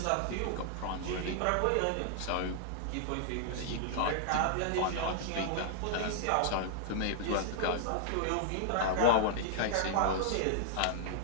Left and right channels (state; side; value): different; both; correlation -0.01